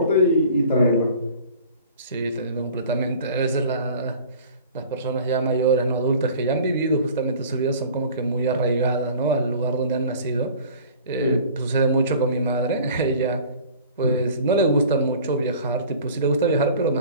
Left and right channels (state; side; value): inverted; both; correlation -0.45